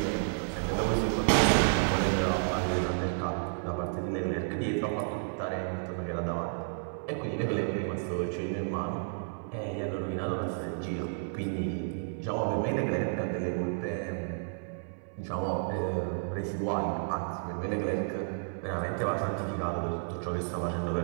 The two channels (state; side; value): silent; left; 57 dB below the other